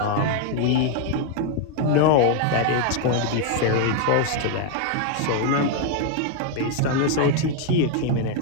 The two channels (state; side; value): different; both; correlation 0.01